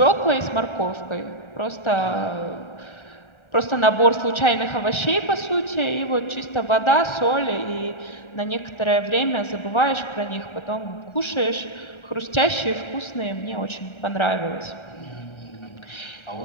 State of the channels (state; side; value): late; right; 1.3 ms